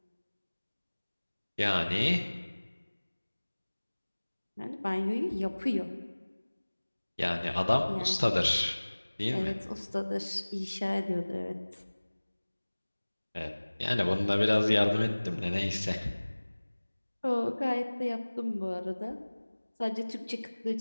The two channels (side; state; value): both; inverted; correlation -1.00